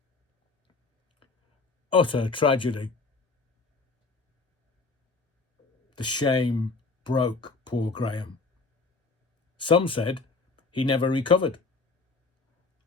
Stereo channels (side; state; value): right; quieter; 4.0 dB